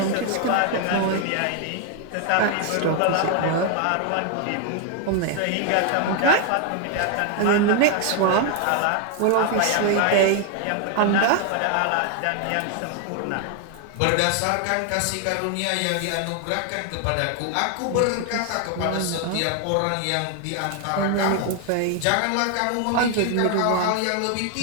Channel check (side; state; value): both; different; correlation 0.00